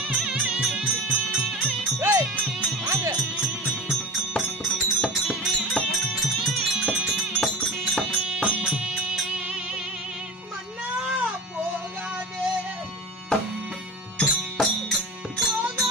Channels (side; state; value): both; normal; correlation 0.32